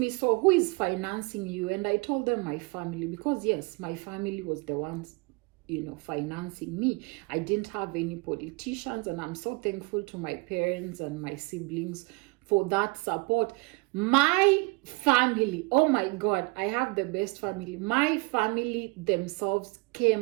so who is financing you? And I told them my family, because yes, my family was the ones, you know, financing me. I didn't have any politicians, and I'm so thankful to my parents and my siblings for that support. My family, oh my God, I have the best family. My family themselves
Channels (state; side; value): quieter; left; 27.7 dB